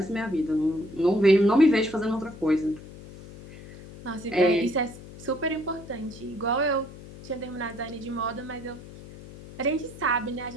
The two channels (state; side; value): noise; left; hum, 16 dB below the sound